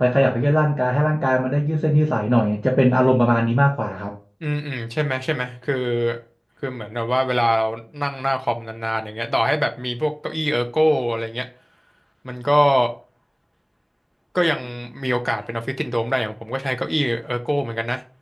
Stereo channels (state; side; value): identical; both; correlation 1.00